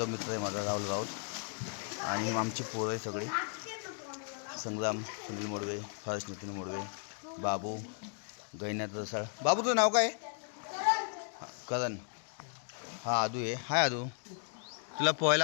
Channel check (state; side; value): silent; right; 54 dB below the other